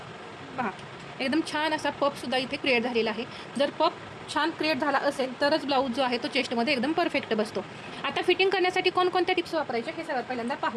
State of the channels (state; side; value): identical; both; correlation 1.00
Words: पहा एकदम छान असा पफसुद्धा इथे क्रिएट झालेला आहे। जर पफ छान क्रिएट झाला असेल तरच ब्लाऊज जो आहे तो चेस्टमध्ये एकदम परफेक्ट बसतो। आता फिटिंग करण्यासाठी कोणकोणत्या टिप्स वापरायचे हे सर्वात पहिल्यांदा